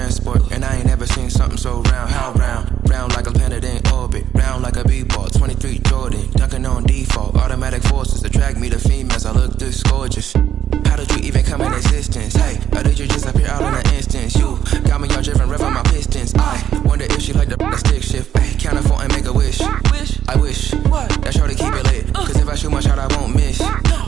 and I ain't never seen something so round. How round? Round like a planet in orbit, round like a b-ball. 23 Jordan, dunking on default. Automatic forces attract me to females. I look this gorgeous. How did you even come in existence? Hey, or did you just appear out in an instance? You got me all driven, revving my pistons. I wonder if she like the stick shift. Ay, count a four and make a wish. I wish that shorty keep it lit. Cause if I shoot my shot, I won't miss.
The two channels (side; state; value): left; quieter; 10.1 dB